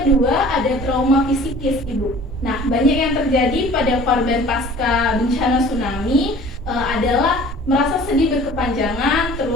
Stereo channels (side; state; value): both; normal; correlation 0.47